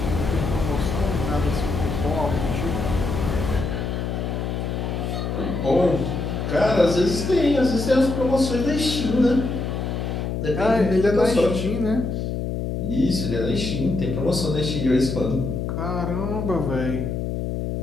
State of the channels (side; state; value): left; noise; hum, 2 dB below the sound